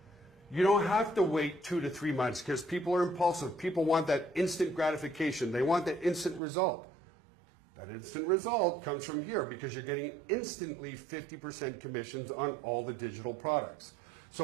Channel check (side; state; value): left; drops out; at 6.4 s